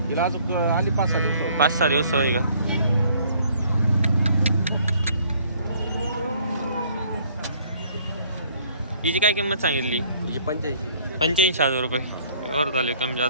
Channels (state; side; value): inverted; both; correlation -0.60